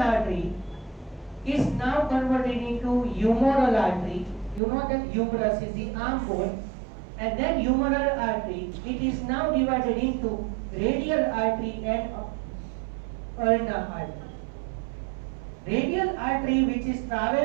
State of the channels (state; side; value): drops out; left; at 4.6 s